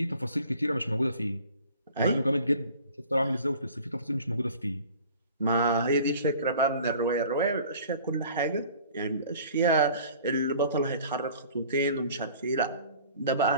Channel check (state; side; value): inverted; both; correlation -0.48